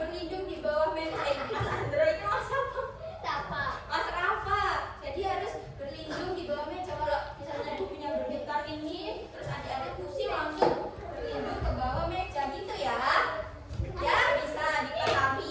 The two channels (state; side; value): identical; both; correlation 1.00